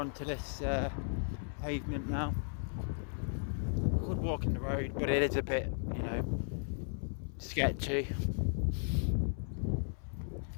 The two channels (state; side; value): silent; right; 54 dB below the other